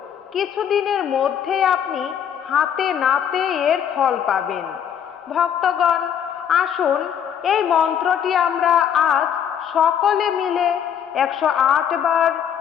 কিছুদিনের মধ্যেই আপনি হাতে নাতে এর ফল পাবেন। ভক্তগণ, আসুন এই মন্ত্রটি আমরা আজ সকলে মিলে 108 বার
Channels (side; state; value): right; quieter; 8.8 dB